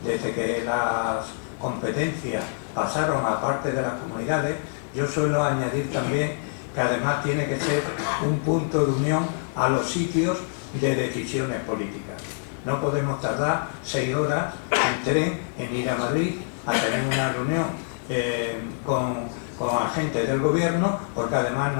desde que las competencias pasaron a parte de las comunidades, yo suelo añadir también que además tiene que ser un punto de unión a los sitios de decisiones políticas. No podemos tardar 6 horas en tren en ir a Madrid a tener una reunión con agentes del gobierno, porque además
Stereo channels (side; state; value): right; silent; digital silence